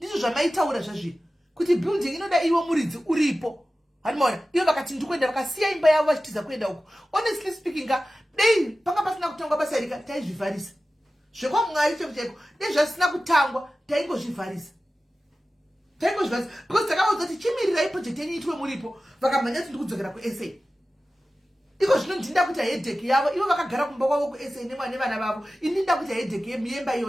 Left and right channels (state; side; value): normal; both; correlation 0.95